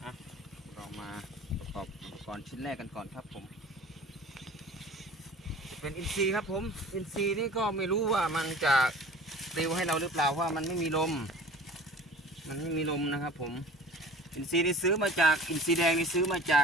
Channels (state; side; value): normal; both; correlation 0.43